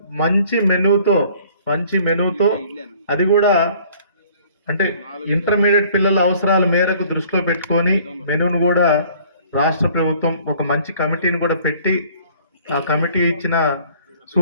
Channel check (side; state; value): both; inverted; correlation -0.55